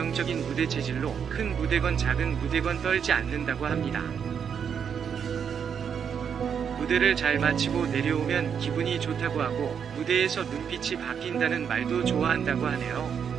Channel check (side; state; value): left; quieter; 7.4 dB